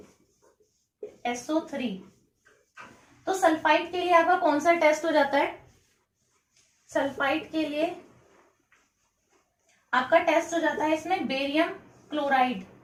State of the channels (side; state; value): both; identical; correlation 1.00